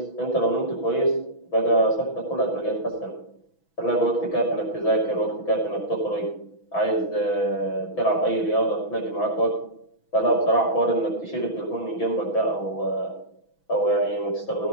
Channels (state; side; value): late; right; 6.1 ms